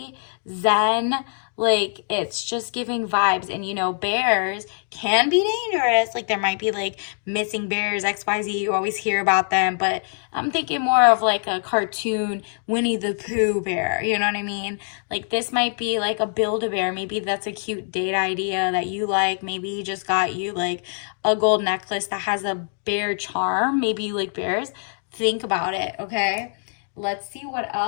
zen. Like it's just giving vibes. And you know, bears can be dangerous. Like there might be like missing bears, XYZ. You always hear about them, but I'm thinking more of like a cartoon Winnie the Pooh bear. You know what I mean? Like this might be like a Build-A-Bear. Maybe that's a cute date idea that you like. Maybe he just got you like a gold necklace that has a bear charm. Maybe you like bears. Think about it, okay? Let's see what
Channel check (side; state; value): right; silent; digital silence